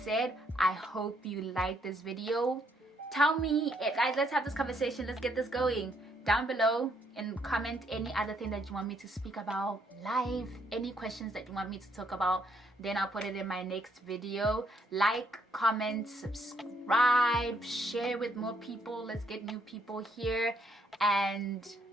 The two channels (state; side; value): normal; both; correlation 0.71